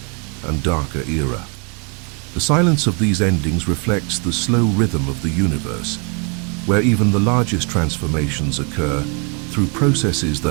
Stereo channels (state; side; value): quieter; left; 35.9 dB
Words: and darker era. The silence of these endings reflects the slow rhythm of the universe, where even the largest transformations occur through processes